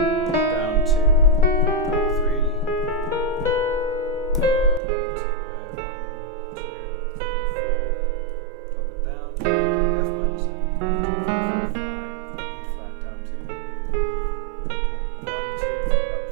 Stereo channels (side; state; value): left; drops out; at 4.8 s